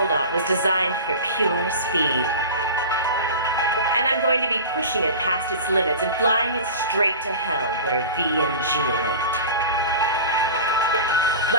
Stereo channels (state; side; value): inverted; both; correlation -0.33